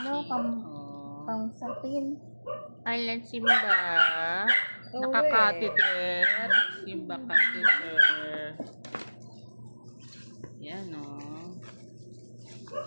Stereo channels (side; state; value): both; inverted; correlation -1.00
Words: ano, Oh. pang sapin. Ayan, Simba. Nakakateter. Simba catheter. Yan, o.